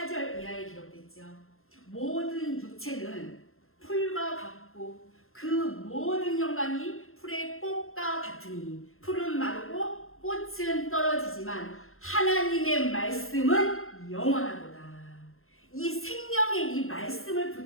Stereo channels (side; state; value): right; late; 0.61 ms